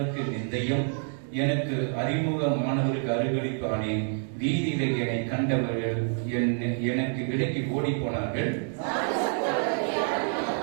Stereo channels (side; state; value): left; silent; 60 dB below the other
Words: நிந்தையும் எனக்கு அறிமுகமானவருக்கு அருகழிப்பானேன். வீதியில என்னை கண்டவர்கள் எனக்கு விலக்கி ஓடி போனார்கள்.